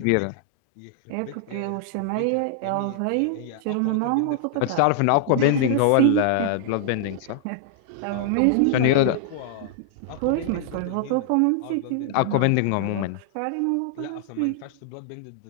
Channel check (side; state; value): both; different; correlation -0.01